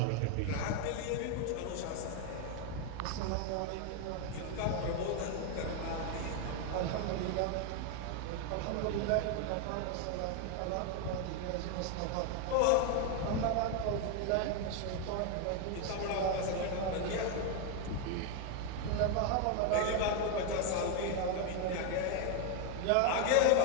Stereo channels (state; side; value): different; both; correlation 0.01